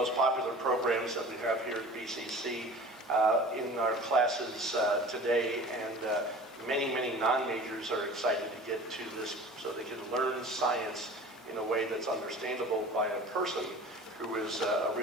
popular programs that we have here at BCC in our classes today, and many non-majors are excited to get to this so they can learn science in a way that's understandable by a person who is a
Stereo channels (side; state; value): both; normal; correlation 0.41